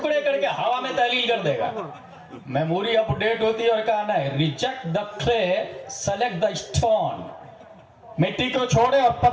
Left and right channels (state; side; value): identical; both; correlation 1.00